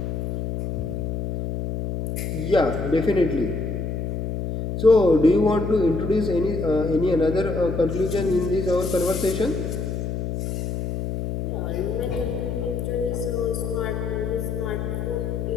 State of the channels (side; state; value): left; noise; hum, 3 dB below the sound